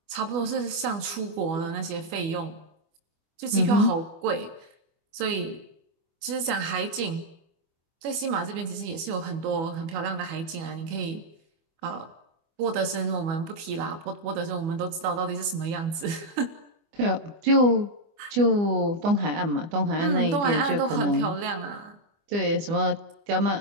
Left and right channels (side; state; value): left; late; 25 ms